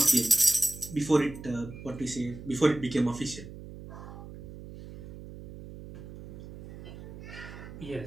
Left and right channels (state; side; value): noise; right; hum, 13 dB below the sound